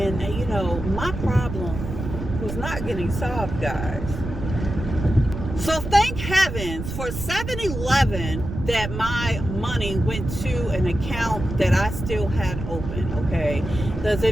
you know, my problem was not getting solved, guys. So thank heavens for 7-Eleven that my money went to an account that I still had open, okay? Because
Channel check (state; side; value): noise; right; rumble, 7 dB below the sound